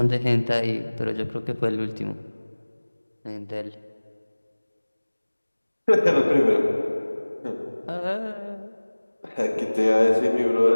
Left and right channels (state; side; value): inverted; both; correlation -1.00